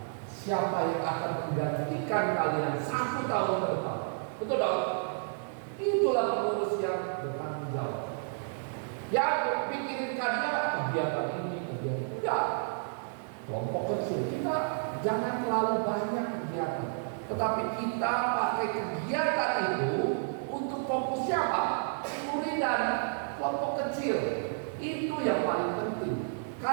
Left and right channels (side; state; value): left; silent; 57 dB below the other